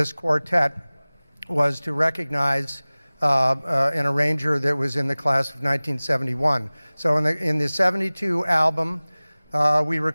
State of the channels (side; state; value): both; inverted; correlation -0.99